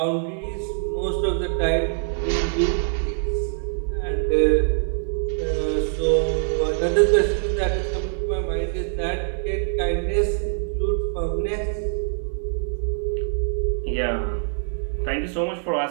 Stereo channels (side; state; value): left; silent; digital silence